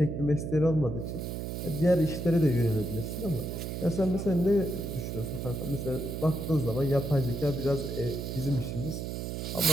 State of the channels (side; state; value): right; noise; hum, 5 dB below the sound